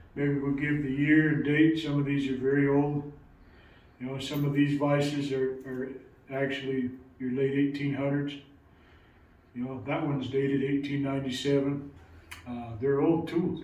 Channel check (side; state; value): both; identical; correlation 1.00